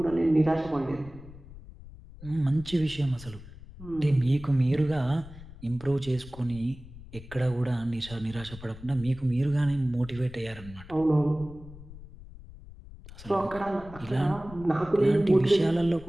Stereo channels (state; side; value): noise; left; rumble, 17 dB below the sound